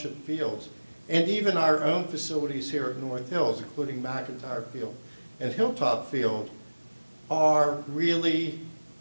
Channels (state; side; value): inverted; both; correlation -1.00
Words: fields and even our own facilities here at North Hills, including McIntyre Field and Hilltop Field, are really